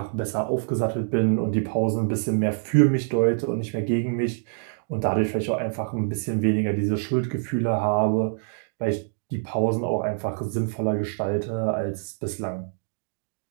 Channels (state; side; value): silent; left; digital silence